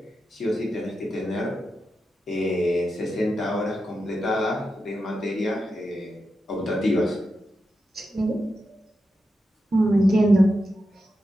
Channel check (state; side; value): normal; both; correlation 0.88